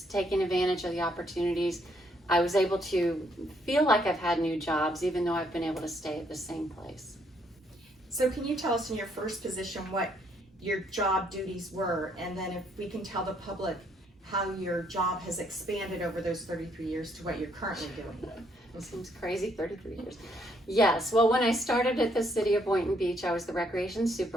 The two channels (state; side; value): normal; both; correlation 0.70